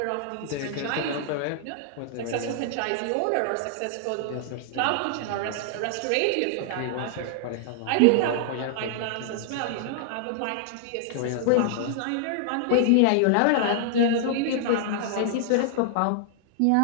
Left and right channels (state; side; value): different; both; correlation -0.01